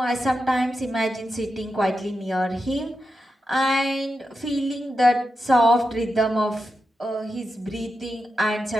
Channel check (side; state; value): both; normal; correlation 0.88